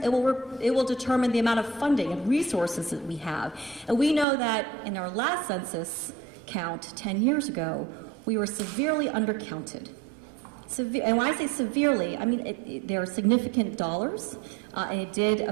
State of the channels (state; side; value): drops out; left; at 4.2 s